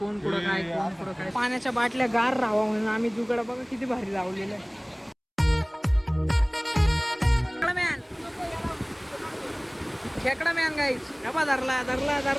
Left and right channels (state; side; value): identical; both; correlation 1.00